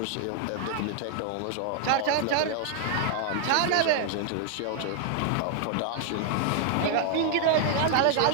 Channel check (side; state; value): both; different; correlation -0.01